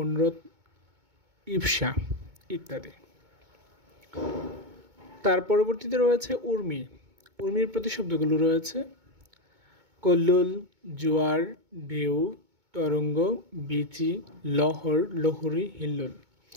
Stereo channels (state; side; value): late; left; 2.2 ms